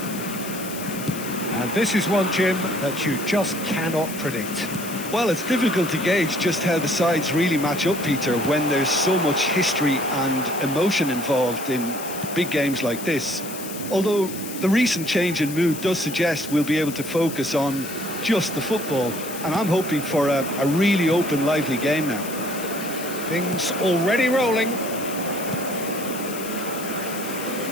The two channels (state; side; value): noise; left; hiss, 11 dB below the sound